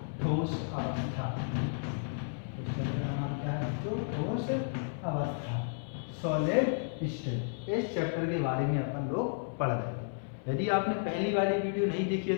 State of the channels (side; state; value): right; silent; 56 dB below the other